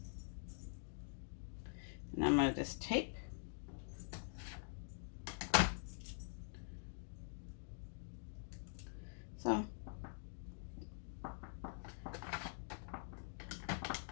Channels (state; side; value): silent; right; digital silence